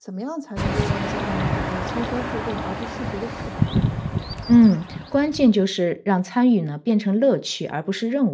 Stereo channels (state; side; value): identical; both; correlation 1.00